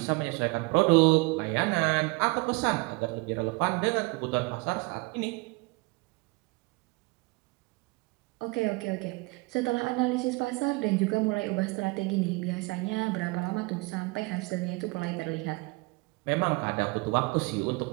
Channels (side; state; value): left; quieter; 26.3 dB